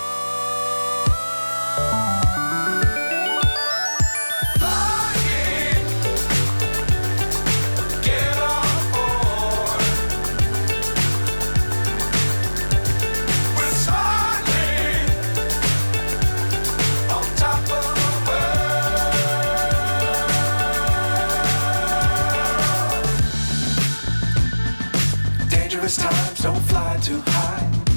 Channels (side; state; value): both; inverted; correlation -1.00